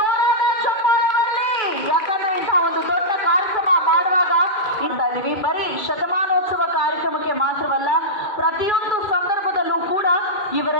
ಚಪ್ಪಾಳೆ ಬರಲಿ. ಯಾಕಂದ್ರೆ ಇಂತಹ ಒಂದು ದೊಡ್ಡ ಕಾರ್ಯಕ್ರಮ ಮಾಡುವಾಗ ಇದೀವಿ, ಬರೀ ಶತಮಾನೋತ್ಸವ ಕಾರ್ಯಕ್ರಮಕ್ಕೆ ಮಾತ್ರವಲ್ಲ, ಪ್ರತಿಯೊಂದು ಸಂದರ್ಭದಲ್ಲೂ ಕೂಡ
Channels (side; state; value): right; late; 2.3 ms